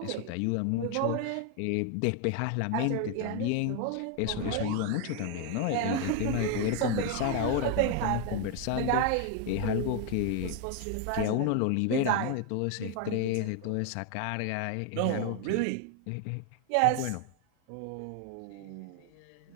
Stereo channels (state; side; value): different; both; correlation 0.01